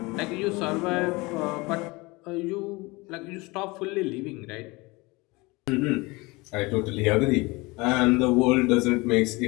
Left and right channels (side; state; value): right; quieter; 24.1 dB